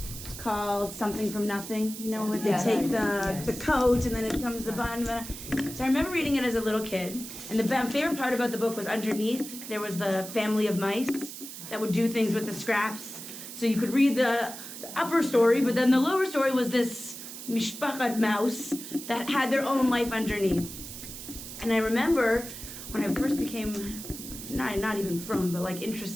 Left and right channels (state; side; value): noise; right; hiss, 11 dB below the sound